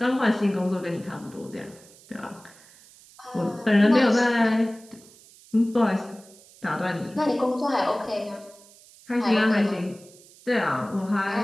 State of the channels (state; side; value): noise; right; hiss, 24 dB below the sound